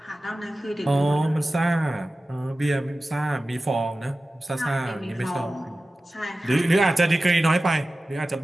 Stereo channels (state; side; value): normal; both; correlation 0.95